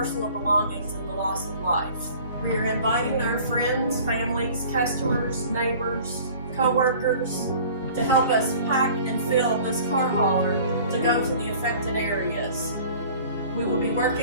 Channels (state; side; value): inverted; both; correlation -0.47